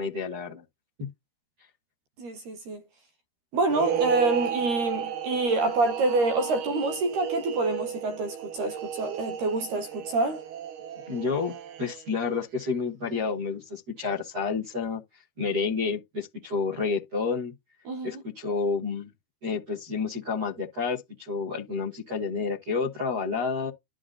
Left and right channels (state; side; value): late; left; 13 ms